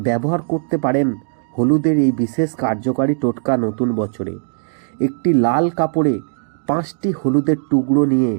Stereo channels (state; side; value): silent; left; digital silence